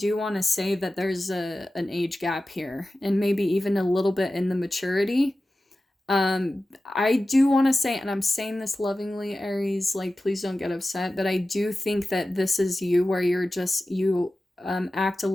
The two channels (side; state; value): both; normal; correlation 0.95